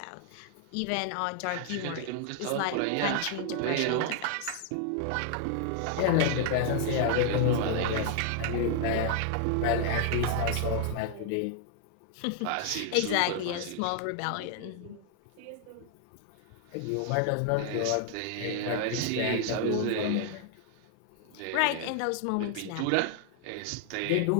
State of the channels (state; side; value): different; both; correlation 0.00